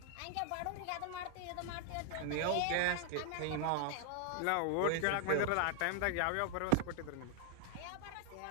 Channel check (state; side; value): different; both; correlation 0.00